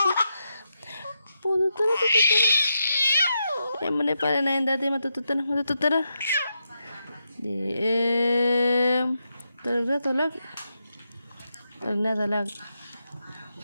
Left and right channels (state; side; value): inverted; both; correlation -0.85